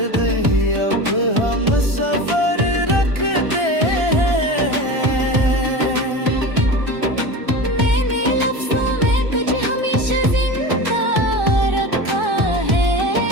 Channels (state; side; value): late; left; 1.3 ms